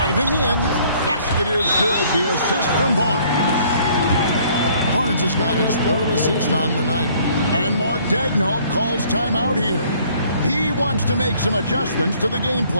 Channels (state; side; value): inverted; both; correlation -0.60